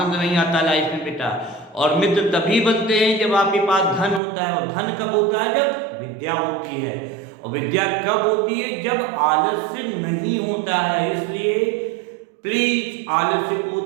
नहीं आता लाइफ में बेटा। और मित्र तभी बनते हैं जब आपके पास धन होता है, और धन कब होता है? जब विद्या होती है। और विद्या कब होती है? जब आलस्य नहीं होता है। इसलिए प्लीज आलस्य को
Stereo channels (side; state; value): left; drops out; at 4.2 s